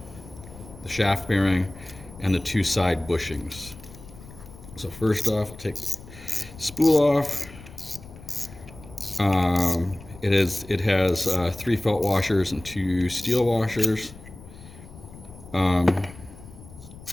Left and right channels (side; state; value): left; noise; rumble, 18 dB below the sound